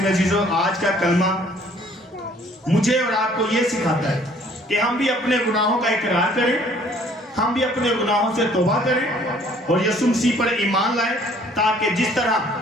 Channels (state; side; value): normal; both; correlation 0.58